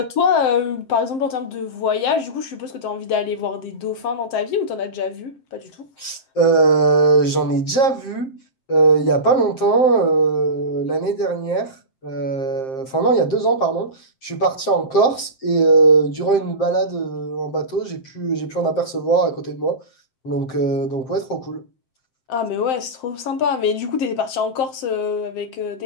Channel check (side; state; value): right; late; 7.6 ms